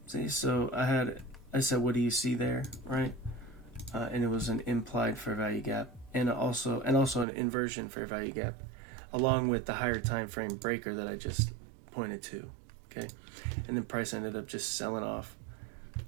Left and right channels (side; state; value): left; drops out; at 7.2 s